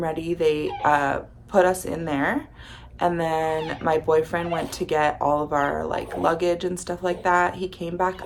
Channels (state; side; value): identical; both; correlation 1.00